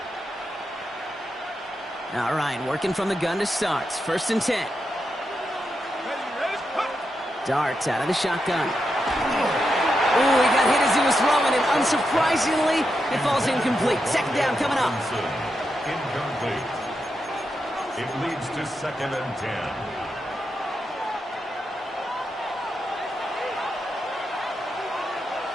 All right, working from the gun to start. First and 10. Dart out of the shotgun. Ooh, he got hit as he was throwing, and unsurprisingly, it falls incomplete. Second down coming up. Incomplete. It leads to second and 10.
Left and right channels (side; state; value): both; normal; correlation 0.86